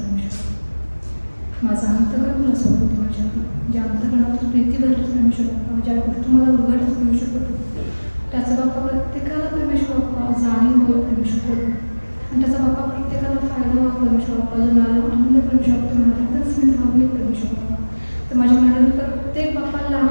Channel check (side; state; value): both; inverted; correlation -1.00